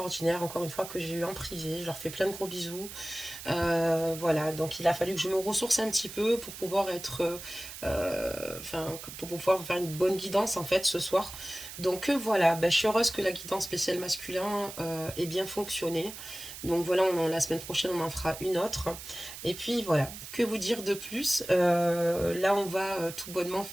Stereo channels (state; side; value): noise; right; hiss, 12 dB below the sound